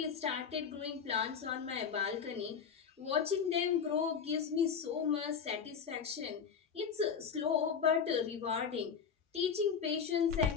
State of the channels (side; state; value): right; quieter; 6.6 dB